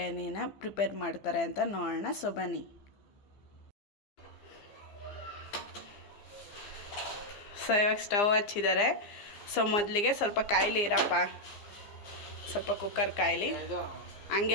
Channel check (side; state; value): right; late; 15 ms